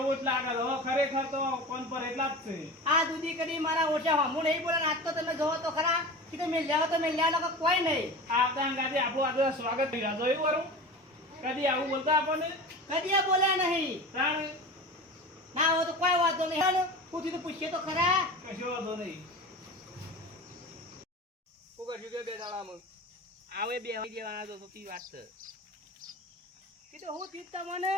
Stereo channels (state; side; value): normal; both; correlation 0.33